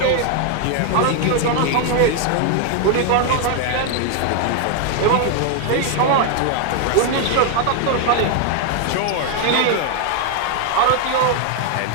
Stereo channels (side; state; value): both; different; correlation 0.00